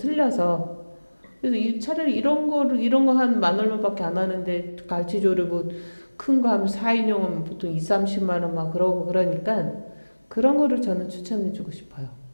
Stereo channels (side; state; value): both; inverted; correlation -1.00